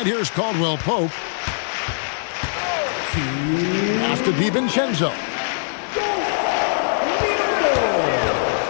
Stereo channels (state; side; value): silent; right; digital silence